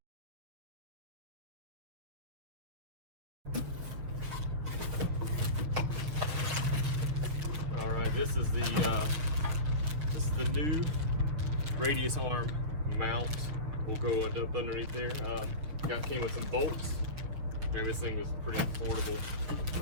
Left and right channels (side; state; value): left; late; 6.7 ms